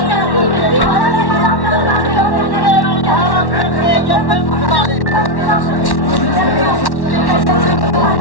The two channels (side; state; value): right; late; 1.1 ms